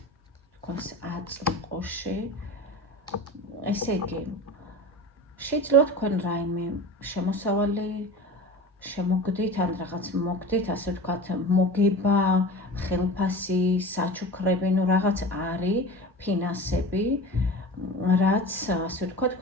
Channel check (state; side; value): normal; both; correlation 0.34